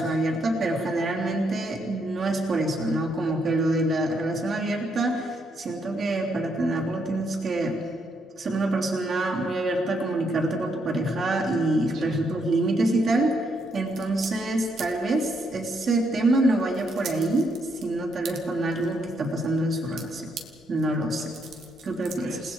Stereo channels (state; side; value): normal; both; correlation 0.76